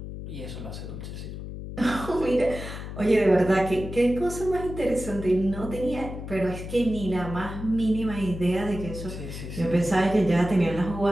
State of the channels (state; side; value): noise; left; hum, 9 dB below the sound